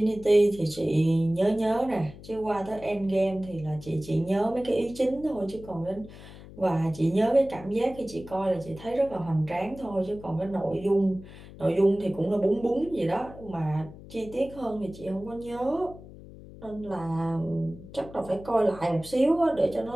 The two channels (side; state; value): left; noise; hum, 17 dB below the sound